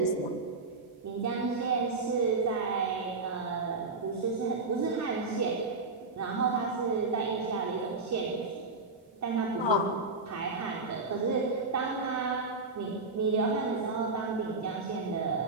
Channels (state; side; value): quieter; left; 3.7 dB